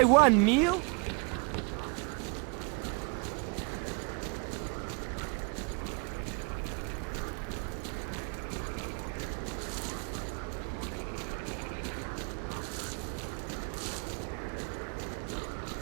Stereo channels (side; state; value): left; quieter; 35.3 dB